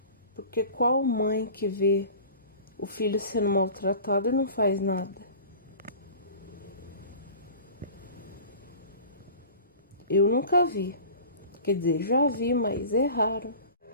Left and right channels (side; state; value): both; inverted; correlation -0.40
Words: Porque qual mãe que vê o filho sendo maltratado e não faz nada? Eu nunca vi. Quer dizer, já vi, mas é raro.